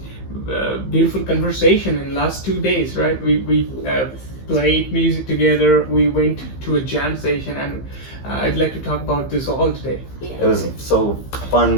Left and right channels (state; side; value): late; right; 15 ms